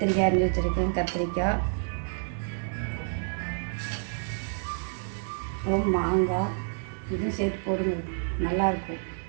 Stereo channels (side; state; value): left; silent; digital silence